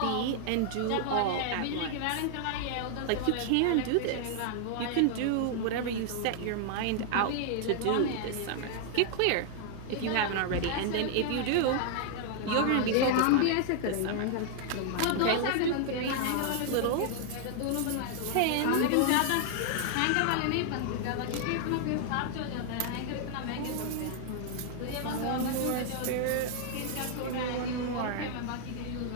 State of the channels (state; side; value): different; both; correlation 0.00